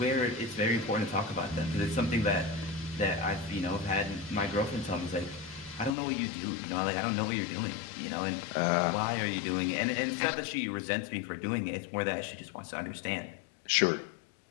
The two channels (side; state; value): right; drops out; at 6.0 s